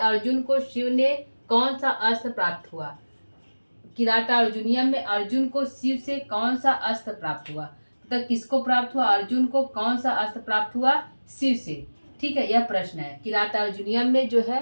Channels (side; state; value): both; inverted; correlation -1.00